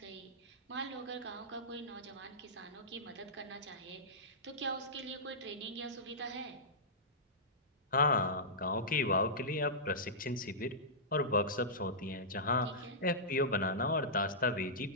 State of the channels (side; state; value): both; normal; correlation -0.15